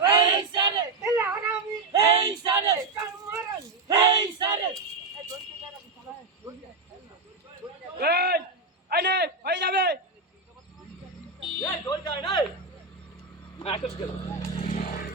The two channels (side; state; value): left; quieter; 3.7 dB